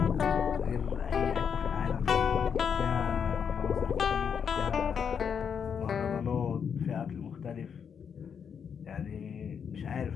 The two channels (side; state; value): right; quieter; 7.2 dB